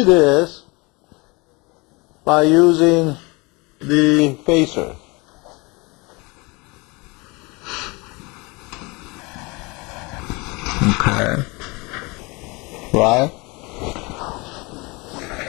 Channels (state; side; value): quieter; right; 26.6 dB